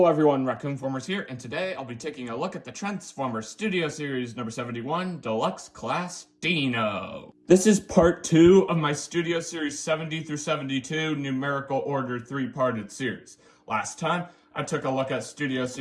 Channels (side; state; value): both; identical; correlation 1.00